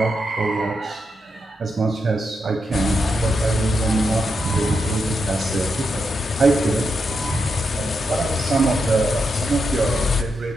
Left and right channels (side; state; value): both; normal; correlation 0.84